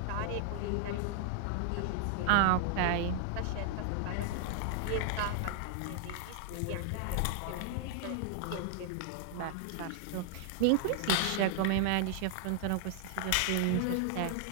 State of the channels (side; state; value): both; different; correlation 0.00